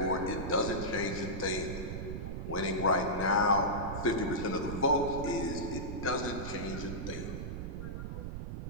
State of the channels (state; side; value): noise; right; rumble, 5 dB below the sound